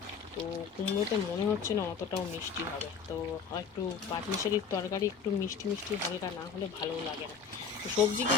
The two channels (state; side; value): quieter; right; 6.1 dB